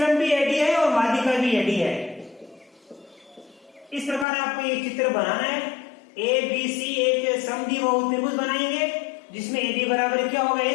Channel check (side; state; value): right; drops out; at 4.2 s